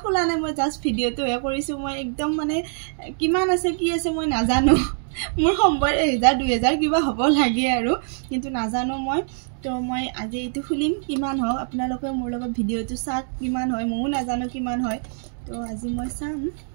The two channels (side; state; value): left; silent; digital silence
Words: খোলা নাই মই জাস্ট ভিডিওটো হে কৰিছো মই একদম মানে কিমান আছে কি আছে মই নাজানো মোৰ সম্ভৱ 1000 2000 কিবা হ'ব লাগে আৰু কিন্তু নাজানো মই তো মই আজি এইটো খুলিম কিমান হয় আপোনালোকে মোৰ লগত ভিডিওটো চাক কিমান হয় মই নাজানো কিমান হয় তো আজি মই চাম